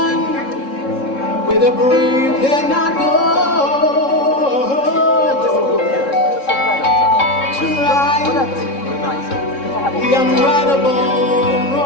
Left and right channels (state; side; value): late; right; 3.7 ms